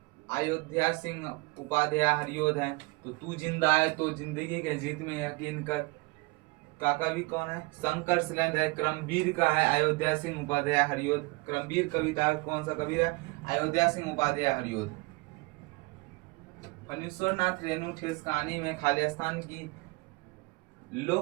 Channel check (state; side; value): quieter; left; 25.7 dB